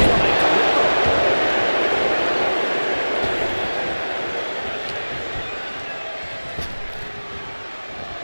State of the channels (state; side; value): inverted; both; correlation -1.00